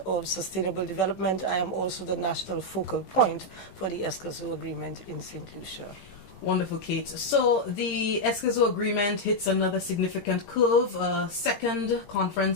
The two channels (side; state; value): right; late; 17 ms